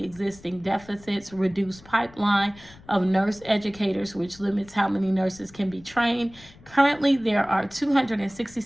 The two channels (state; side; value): noise; left; rumble, 23 dB below the sound